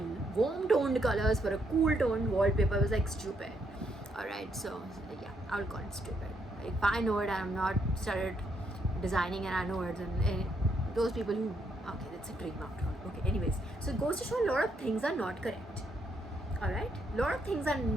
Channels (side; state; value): both; normal; correlation 0.75